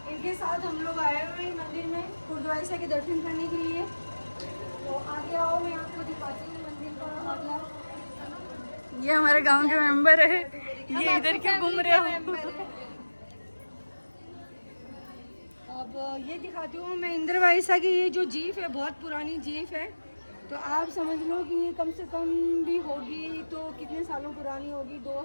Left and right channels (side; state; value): both; inverted; correlation -1.00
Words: इनके साथ हम लोग आए हुए हैं मंदिर में गुरुद्वारा के दर्शन करने के लिए। तो आगे आओ, मैं आपको दिखाती हूँ मंदिर का मतलब। ये हमारे गांव के मेंबर है, ये इधर क्यों घूम रहे हो? अब ये दिखाती हूँ मैं इंद्रवाइसा की। ये जो जीप है बहुत पुरानी जीप है, तो आप समझ लो कि ये कम से कम भी होगी तो कितने सालों पुरानी होगी,